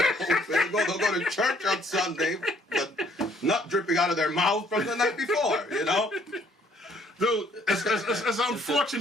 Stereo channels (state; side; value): normal; both; correlation 0.63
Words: They'll go to church on Sunday, but nut dripping out of their mouth from the night before, you know? Dude, it's